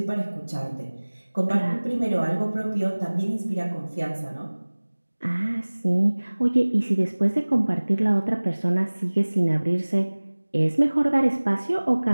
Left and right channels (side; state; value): both; inverted; correlation -1.00